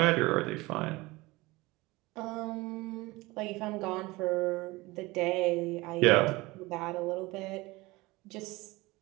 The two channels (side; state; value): left; quieter; 21.6 dB